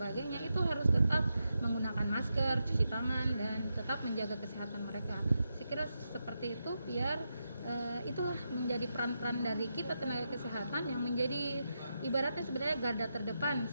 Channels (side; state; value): both; inverted; correlation -0.86